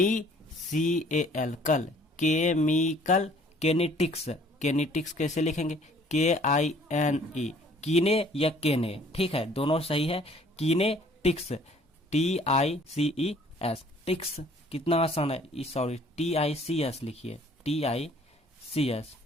कल केमिकल केनेटिक्स। केनेटिक्स कैसे लिखेंगे, KINE कीने या केने। ठीक है, दोनों सही है। कीनेटिक्स TICES टिक्स, कितना आसान है। सॉरी TICS लिखिए, TICS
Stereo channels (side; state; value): both; normal; correlation 0.57